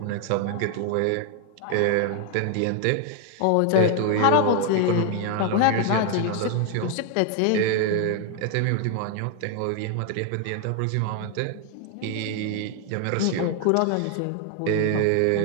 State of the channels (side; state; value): both; different; correlation 0.00